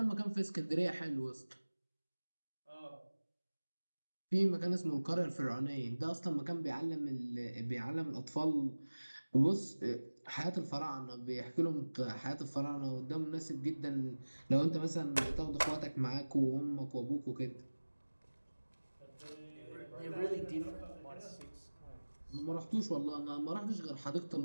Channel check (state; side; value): inverted; both; correlation -1.00